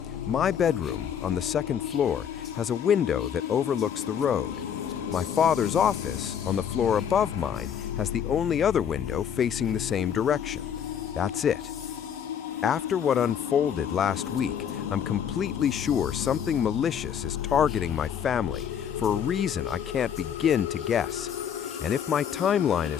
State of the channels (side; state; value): right; quieter; 8.4 dB